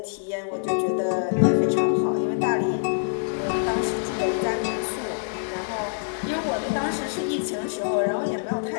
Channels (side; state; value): right; silent; digital silence